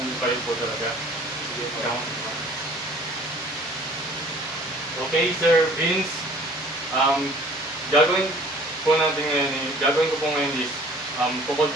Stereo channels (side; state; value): both; normal; correlation 0.52